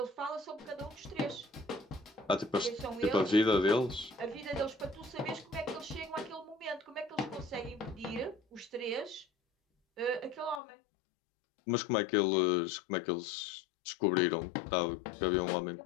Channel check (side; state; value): right; drops out; at 10.6 s